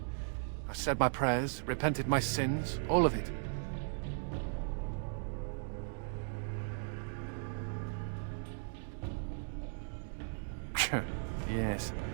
I said my prayers, repented my sins, all of it. Yes,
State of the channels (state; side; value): silent; left; digital silence